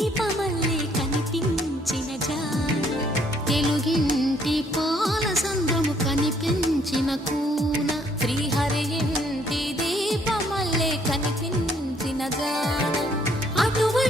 కనిపించిన జాన. తెలుగింటి పాల సంద్రము కనిపించిన కూన శ్రీహరి ఇంటి దీపమల్లే కనిపించిన జాన.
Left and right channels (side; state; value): both; normal; correlation 0.66